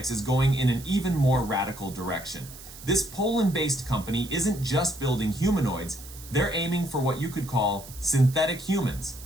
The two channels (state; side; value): noise; right; hiss, 16 dB below the sound